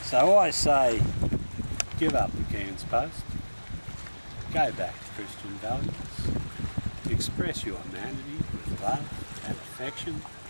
So I say, give up the Cairns Post, go back to Christian values, express your humanity with love and affection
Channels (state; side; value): inverted; both; correlation -1.00